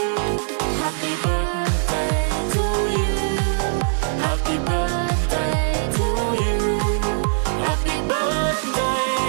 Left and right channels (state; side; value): silent; left; 65 dB below the other